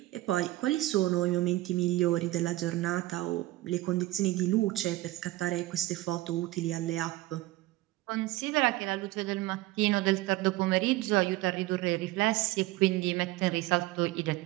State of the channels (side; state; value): left; quieter; 17.8 dB